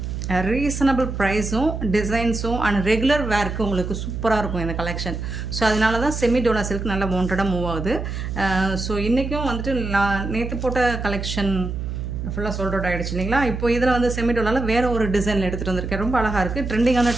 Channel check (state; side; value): noise; right; hum, 5 dB below the sound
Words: ரீசனபிள் ப்ரைஸும் டிசைன்ஸும் அண்ட் ரெகுலர் வேர்க்கு உங்களுக்கு சூப்பராக இருக்கும் இந்த கலெக்ஷன். ஸோ அதனால தான் செமி டோலா சில்க் நல்லா வாண்டடாக மூவ் ஆகுது. ஸோ இன்றைக்கும் வந்துட்டு நான் நேற்று போட்ட கலெக்ஷன் ஃபுல்லாக சோல்ட் அவுட் ஆகிடுச்சு இல்லைங்களா. இப்போ இதில் வந்து செமி டோலாவில் வேறு ஒரு டிசைனில் எடுத்துகிட்டு வந்திருக்கேன். ரொம்ப அழகாக இருக்குது, ட்ரெண்டிங்கான